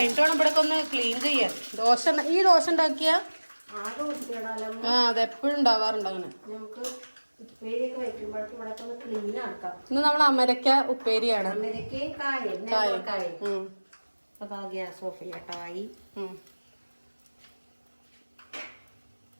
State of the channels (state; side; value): inverted; both; correlation -1.00